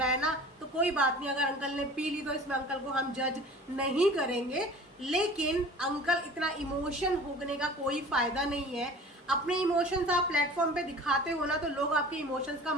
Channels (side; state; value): both; normal; correlation 0.43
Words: है ना, तो कोई बात नहीं। अगर अंकल ने पी ली तो इसमें अंकल को हम जज नहीं करेंगे। लेकिन अंकल इतना इमोशन होने का कोई फायदा नहीं है। अपने इमोशंस आप प्लेटफॉर्म पे दिखाते हो ना तो लोग आपके इमोशंस का